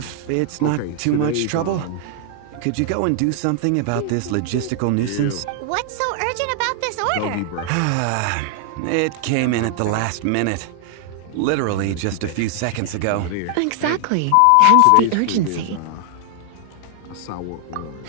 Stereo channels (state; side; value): different; both; correlation 0.00